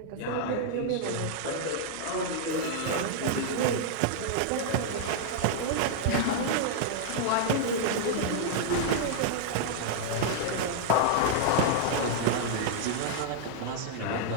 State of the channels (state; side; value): different; both; correlation -0.01